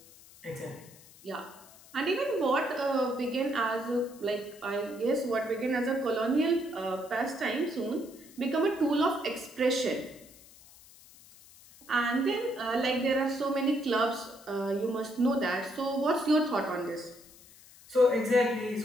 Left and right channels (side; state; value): left; noise; hiss, 22 dB below the sound